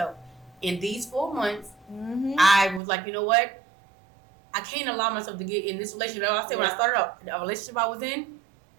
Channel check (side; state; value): left; drops out; at 2.8 s